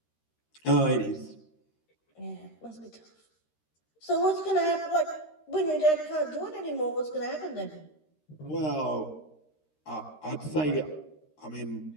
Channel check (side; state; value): right; late; 13 ms